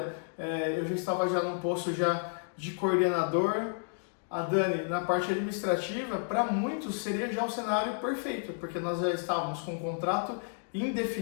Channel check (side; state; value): right; silent; digital silence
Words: eu já estava já num posto já de coordenador, a Dani na parte administrativa, para muitos seria já o cenário perfeito, porque nós já estávamos com um contrato